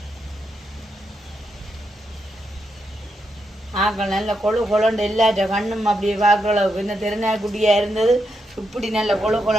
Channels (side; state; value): both; normal; correlation 0.83